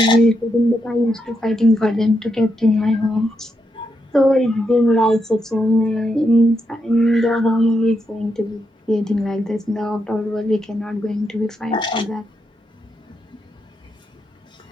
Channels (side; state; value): both; normal; correlation 0.82